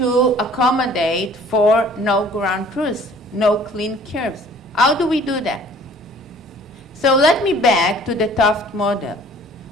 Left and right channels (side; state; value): both; normal; correlation 0.52